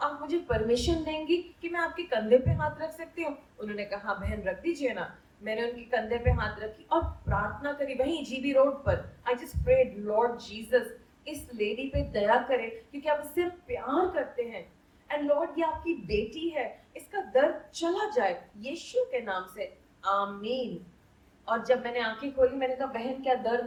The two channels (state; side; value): identical; both; correlation 1.00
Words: मुझे परमिशन देंगी कि मैं आपके कंधे पे हाथ रख सकती हूँ। उन्होंने कहा हाँ बहन रख दीजिए ना। मैंने उनके कंधे पे हाथ रखी और प्रार्थना करी वहीं जीबी रोड पर। I just prayed, lord Jesus इस लेडी पे दया करे, क्योंकि आप इससे प्यार करते हैं। एंड लॉर्ड ये आपकी बेटी है, इसका दर्द चला जाए यीशु के नाम से, आमीन। और जब मैंने आंखें खोली, मैंने कहा बहन क्या